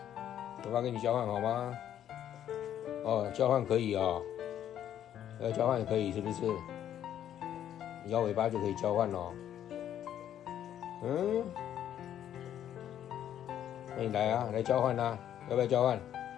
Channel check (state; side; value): quieter; right; 10.6 dB